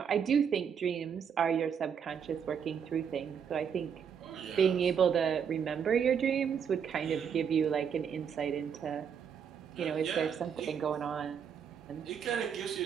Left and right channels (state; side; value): quieter; left; 7.4 dB